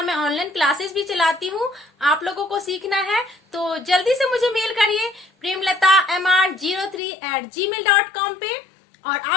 मैं ऑनलाइन क्लासेस भी चलाती हूँ। आप लोगों को सीखना है तो जल्दी से मुझे मेल करिए premlata03@gmail.com पे, और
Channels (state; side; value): drops out; right; at 7.0 s